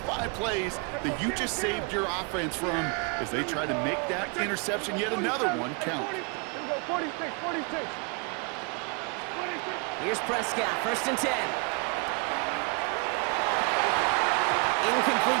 plays that you just saved your offense from as they try to make that interception, yet another one, count. Here we go, 46. Here's Prescott, 1st and 10.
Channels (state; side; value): quieter; left; 34.3 dB